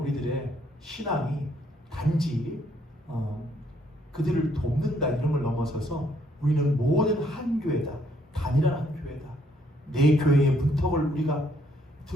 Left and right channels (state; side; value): normal; both; correlation 0.69